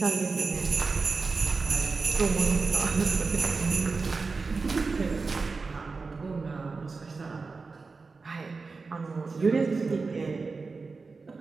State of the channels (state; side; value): quieter; left; 4.3 dB